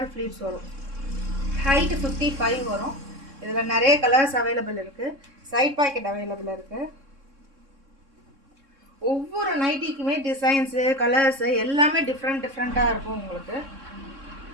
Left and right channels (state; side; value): late; left; 3.6 ms